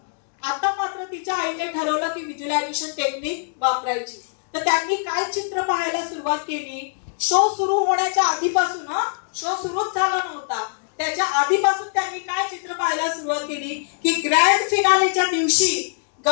आता मात्र तिच्या आईने ठरवलं की व्हिज्युअलायझेशन टेक्निक वापरायची। तर त्यांनी काय चित्र पाहायला सुरुवात केली, शो सुरू होण्याच्या आधीपासून, शो सुरूच झाला नव्हता त्याच्या आधीपासून त्यांनी काय चित्र पाहायला सुरुवात केली की ग्रँड फिनालेच्या दिवशी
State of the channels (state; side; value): silent; right; digital silence